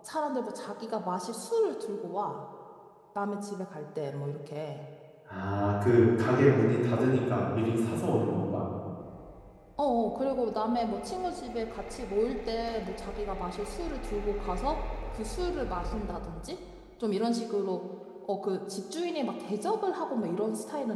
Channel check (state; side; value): identical; both; correlation 1.00